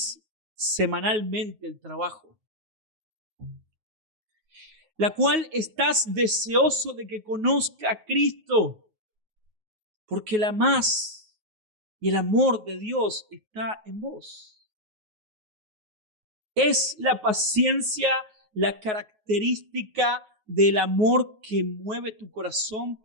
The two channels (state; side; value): late; left; 9.4 ms